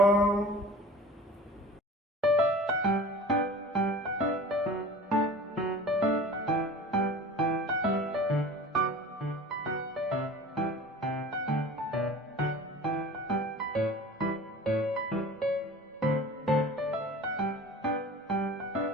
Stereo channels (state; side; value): normal; both; correlation 0.40